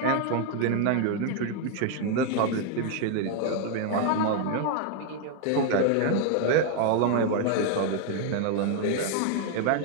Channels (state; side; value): different; both; correlation 0.00